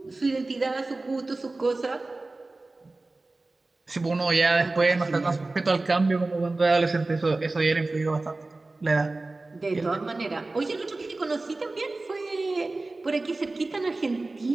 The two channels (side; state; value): left; quieter; 3.2 dB